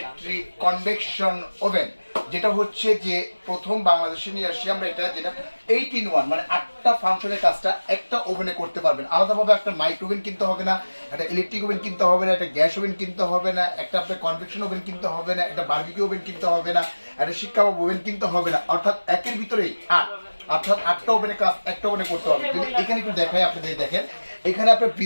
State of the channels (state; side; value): inverted; both; correlation -1.00